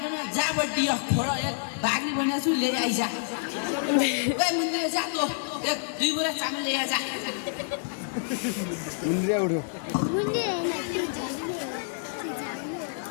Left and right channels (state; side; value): silent; right; digital silence